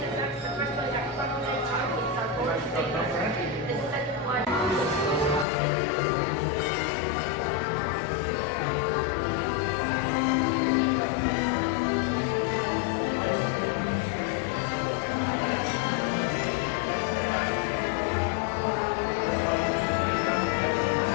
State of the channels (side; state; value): right; drops out; at 5.5 s